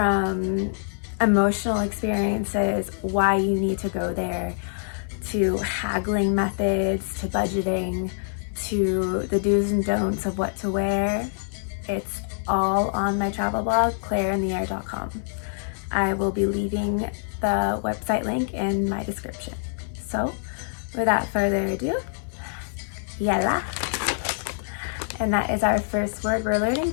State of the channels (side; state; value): right; silent; 57 dB below the other